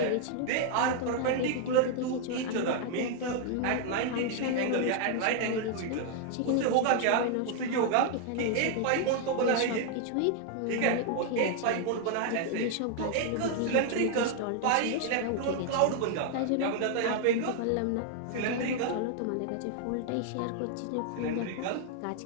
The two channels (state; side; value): different; both; correlation 0.00